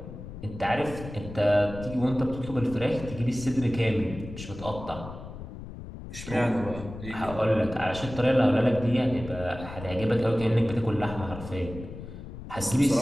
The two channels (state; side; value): noise; left; rumble, 12 dB below the sound